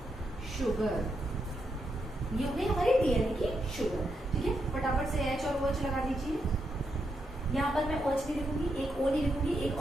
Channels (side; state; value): both; normal; correlation 0.82